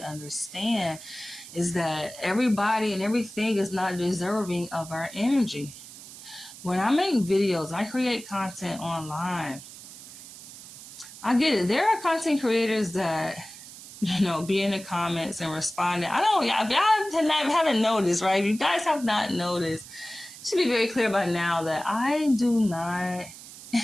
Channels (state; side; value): noise; right; hiss, 16 dB below the sound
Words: understand, is that everybody and everything is not deserving of our energy. When I make videos, I create content online, I get it. There are content creators that be in the comments and responding. If y'all haven't noticed, right? If you guys have not noticed, it should be very clear by now that I do not